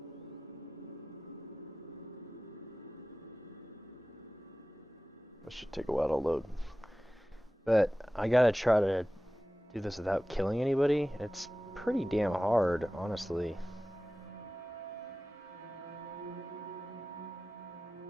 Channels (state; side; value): normal; both; correlation 0.96